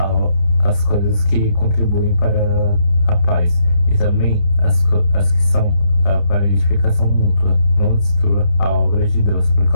as coisas que contribuem para a paz, e também as que são para a edificação mútua. Não destrua a obra de Deus por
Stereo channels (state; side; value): late; right; 29 ms